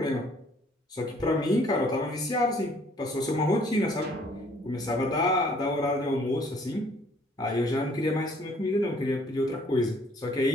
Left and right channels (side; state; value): both; normal; correlation 0.60